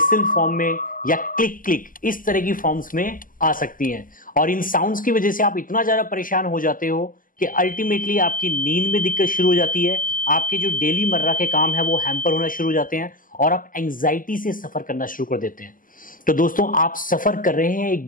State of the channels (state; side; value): late; right; 0.40 ms